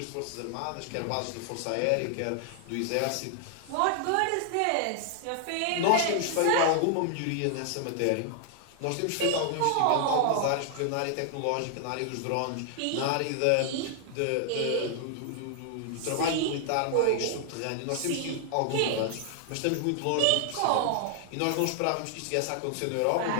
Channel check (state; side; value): different; both; correlation 0.00